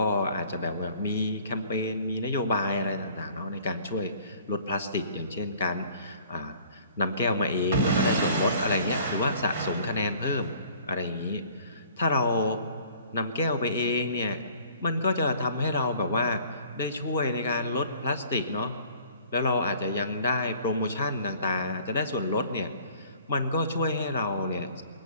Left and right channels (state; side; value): inverted; both; correlation -0.53